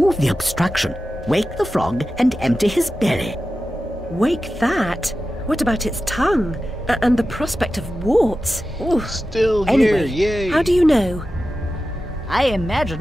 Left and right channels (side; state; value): both; normal; correlation 0.93